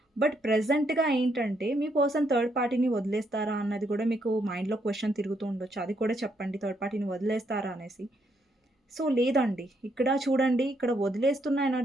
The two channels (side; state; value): both; normal; correlation 0.75